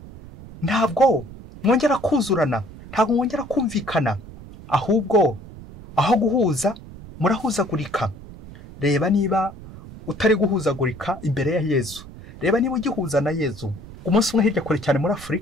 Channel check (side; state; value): right; noise; rumble, 16 dB below the sound